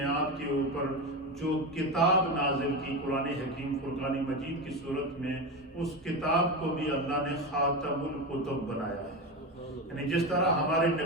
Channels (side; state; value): both; normal; correlation 0.19